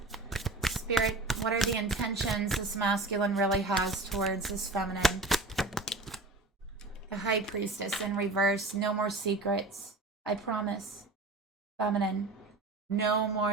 Spirit, what are the intentions this masculine really has towards this feminine? The High Priestess in reverse. No more secrets. I promise. Feminine. No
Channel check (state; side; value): quieter; left; 3.1 dB